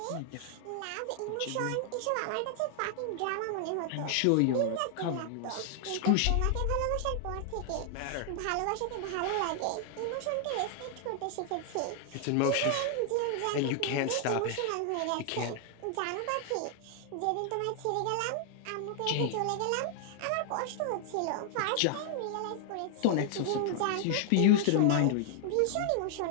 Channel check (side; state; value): both; different; correlation 0.00